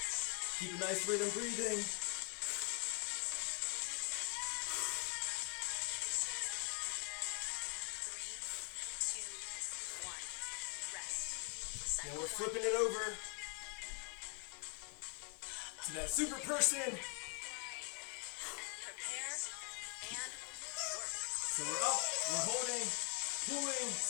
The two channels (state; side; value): quieter; right; 37.6 dB